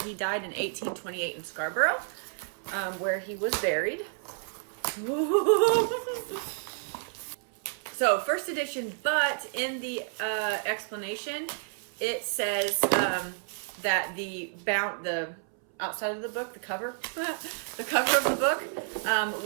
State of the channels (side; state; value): left; silent; 58 dB below the other